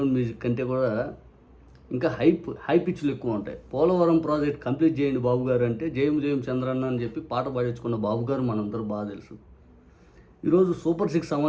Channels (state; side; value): identical; both; correlation 1.00